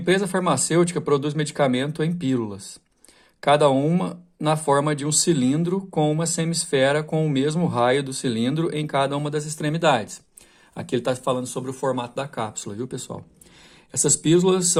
farmacêutica produz medicamento em pílulas, cada uma na forma de um cilindro com uma semisfera com o mesmo raio do cilindro em cada uma das extremidades. Aqui ele está falando sobre o formato da cápsula, viu, pessoal? Essas pílulas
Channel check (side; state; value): both; identical; correlation 1.00